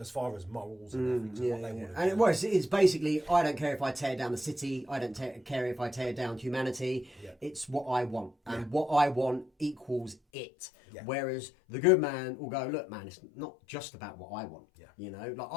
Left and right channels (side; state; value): right; drops out; at 10.2 s